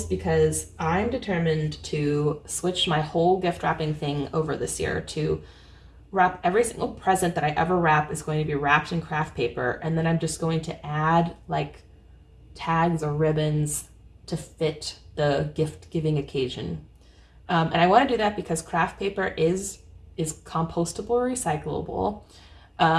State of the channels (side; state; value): both; identical; correlation 1.00